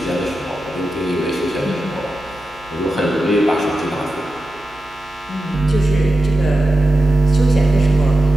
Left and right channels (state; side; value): noise; right; hum, 26 dB below the sound